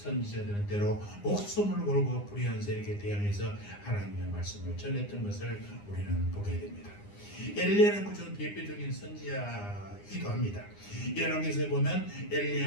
때로 목숨을 걸고 불의한 세력에 대항해서 하나님의 말씀을 전했던 것을 우리는 보게 됩니다. 엘리야는 그중 대표적인 선지자이기도 합니다. 열왕기서에 보면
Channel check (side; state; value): right; late; 9.8 ms